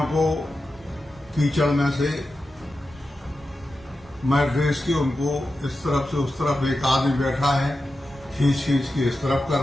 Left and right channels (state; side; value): normal; both; correlation 0.91